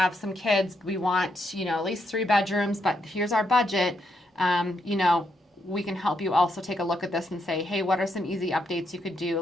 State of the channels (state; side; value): normal; both; correlation 0.79